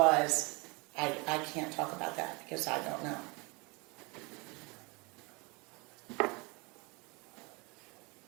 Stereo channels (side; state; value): left; quieter; 28.3 dB